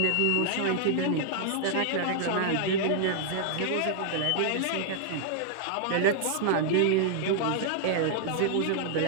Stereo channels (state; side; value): different; both; correlation 0.00